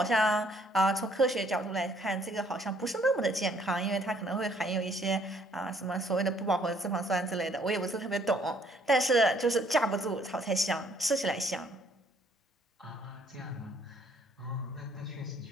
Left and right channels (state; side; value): normal; both; correlation 0.64